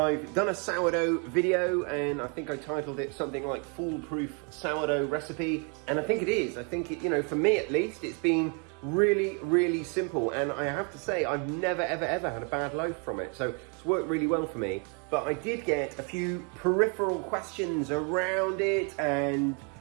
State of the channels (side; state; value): left; quieter; 37.1 dB